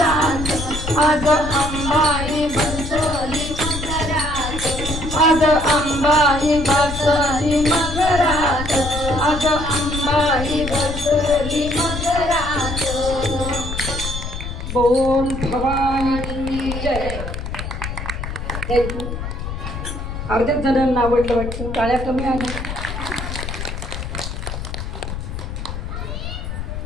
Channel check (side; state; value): left; noise; rumble, 6 dB below the sound